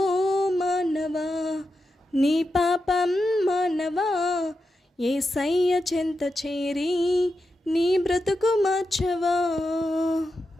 మానవా నీ పాపం మానవా యేసయ్య చెంత చేరి నీ బ్రతుకు మార్చవా.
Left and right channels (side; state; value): both; normal; correlation 0.89